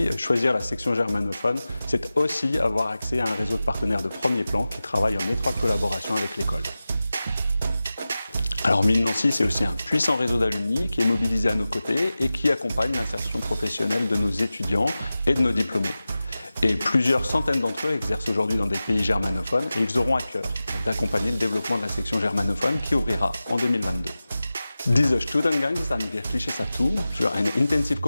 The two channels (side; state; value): both; inverted; correlation -0.95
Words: choisir la section germanophone, c'est aussi avoir accès à un réseau de partenaires de premier plan qui travaillent en étroite collaboration avec l'école. Alors Mines Nancy, c'est aussi un puissant réseau d'alumni qui est mobilisé à nos côtés et qui accompagne l'insertion professionnelle de nos étudiants et de nos diplômés. Et plusieurs centaines d'entre eux exercent aujourd'hui dans des pays germanophones et ils auront à cœur d'accompagner le développement de la section germanophone qui ouvrira en 2022. Dieser Studiengang ist ein wirkliches Atout für eine